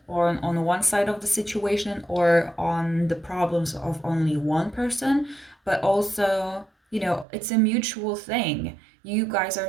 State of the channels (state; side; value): drops out; left; at 7.2 s